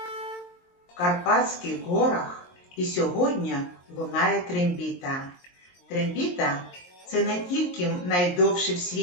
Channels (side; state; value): right; late; 22 ms